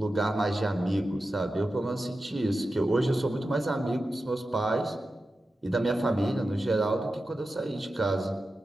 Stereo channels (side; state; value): both; normal; correlation 0.92